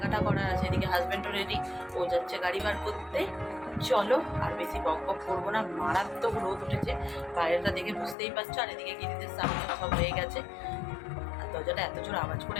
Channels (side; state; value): right; drops out; at 8.2 s